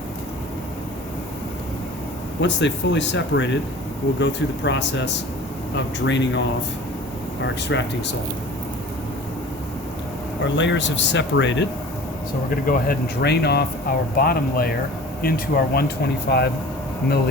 Once they've fully separated, we'll go through the process of draining off our extracting salt. Our layers have separated, so we're going to go ahead and drain off our bottom layer into our 125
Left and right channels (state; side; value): normal; both; correlation 0.42